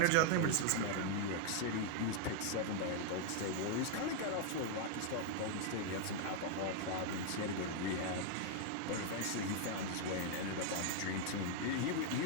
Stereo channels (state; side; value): different; both; correlation 0.00